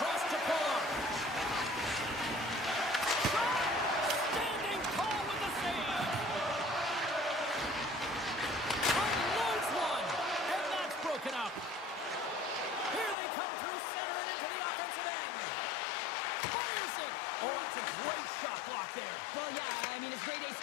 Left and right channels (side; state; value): right; drops out; at 13.2 s